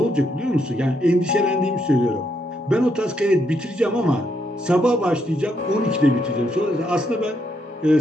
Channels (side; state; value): both; normal; correlation 0.77